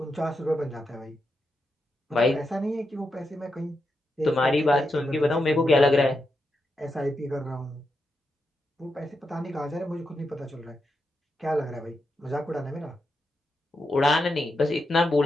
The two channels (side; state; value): both; normal; correlation 0.85